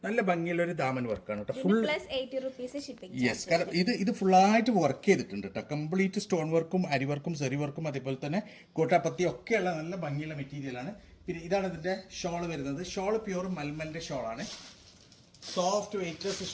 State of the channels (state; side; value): identical; both; correlation 1.00